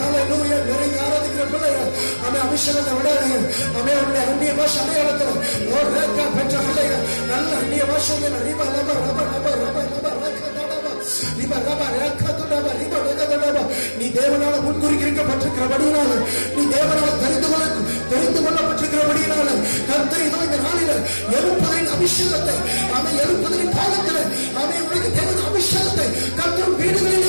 நிறைய ஆராதிக்கிற பிள்ளைகள் அபிஷேகத்தை விடாதீங்க. அந்நிய பாஷை அடையாளத்துல பெற்ற பிள்ளைகள் நல்ல அந்நிய பாஷைகள் நீ தேவனால முன்குறிக்கப்பட்டிருக்கிறபடியினால, நீ தேவனால தெரிந்து கொள்ளப்பட்டிருக்கிறபடியினால கர்த்தர் இந்த நாளில எழுப்புதலின் அபிஷேகத்தை எழுப்புதலின் காலத்தில் உனக்கு தேவன் அபிஷேகத்தை கர்த்தர்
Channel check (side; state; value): both; inverted; correlation -1.00